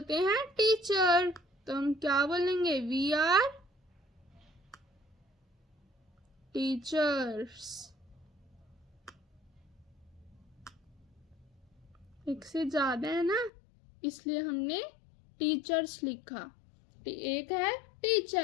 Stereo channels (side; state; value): right; drops out; at 13.5 s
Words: हैं टीचर, तो हम क्या बोलेंगे, वी आर टीचर्स। एक से ज्यादा है ना, इसलिए हमने टीचर्स लिखा। एक है